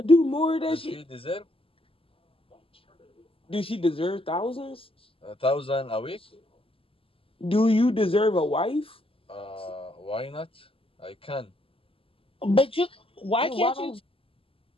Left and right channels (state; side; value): late; right; 0.26 ms